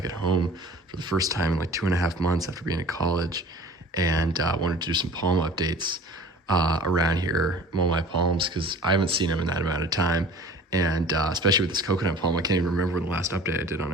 at home for the first time in like 2.5 months after being at college, and wanted to do some palm updates around here, mow my palms, because I haven't seen them in that amount of time. And especially with this coconut palm, I can't even remember when the last update I did on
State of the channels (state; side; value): normal; both; correlation 0.45